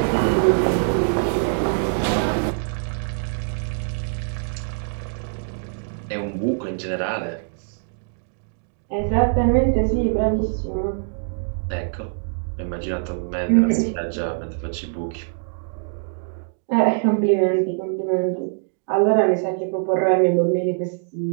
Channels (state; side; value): silent; left; digital silence